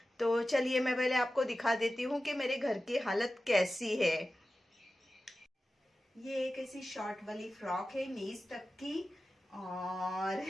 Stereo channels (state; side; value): normal; both; correlation 0.94